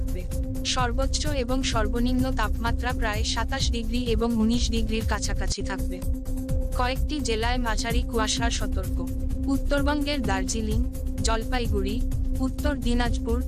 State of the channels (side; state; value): both; identical; correlation 1.00